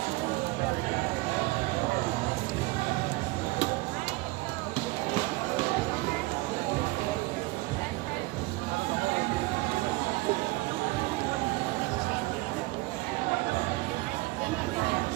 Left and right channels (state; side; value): quieter; left; 22.1 dB